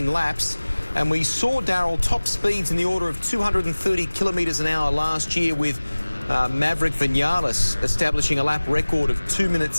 laps. And we saw, Darryl, top speeds in the order of 230 kilometres an hour last year, with Maverick Vinales establishing a lap record of 2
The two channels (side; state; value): both; inverted; correlation -1.00